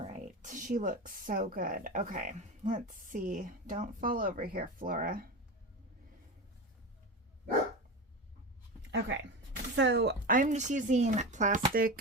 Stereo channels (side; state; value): both; normal; correlation 0.23